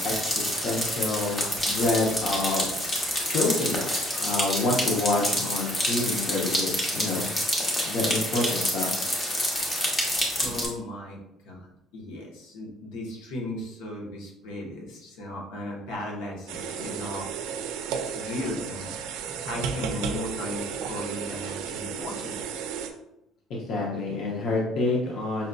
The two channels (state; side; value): normal; both; correlation 0.59